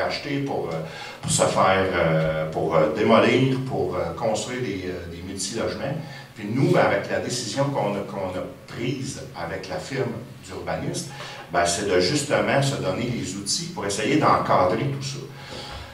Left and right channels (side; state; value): both; identical; correlation 1.00